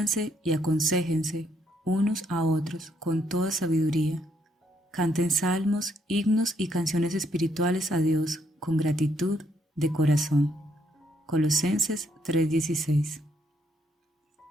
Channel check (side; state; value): both; normal; correlation 0.72